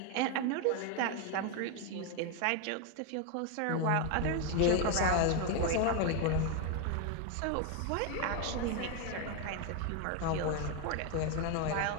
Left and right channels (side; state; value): both; different; correlation 0.01